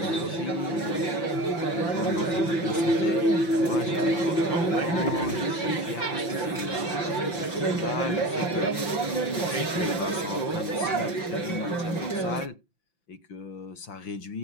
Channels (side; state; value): right; late; 5.8 ms